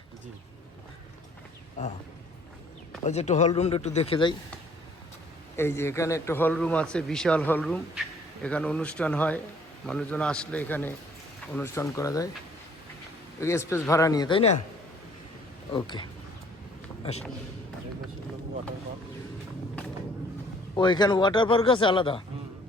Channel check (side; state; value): both; normal; correlation 0.58